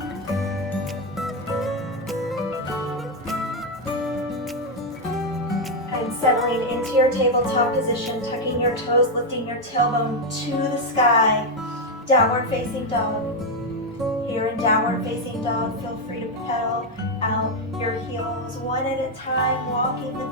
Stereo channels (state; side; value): normal; both; correlation 0.03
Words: And settling into your tabletop position, tucking your toes, lifting your tailbone to the sky. Downward facing dog. Here in downward facing dog, feel free to pedal out your heels one at a time, walking